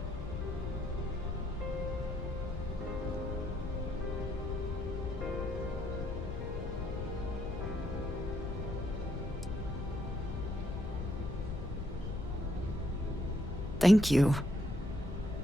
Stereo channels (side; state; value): left; noise; rumble, 5 dB below the sound